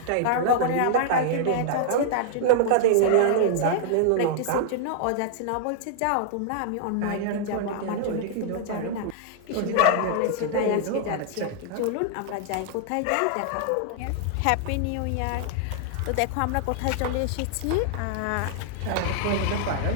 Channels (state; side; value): different; both; correlation -0.01